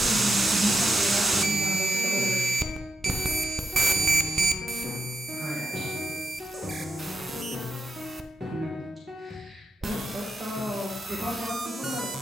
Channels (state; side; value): normal; both; correlation 0.83